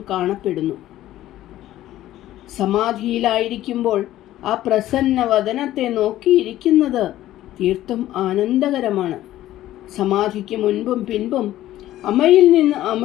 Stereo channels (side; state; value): right; quieter; 14.1 dB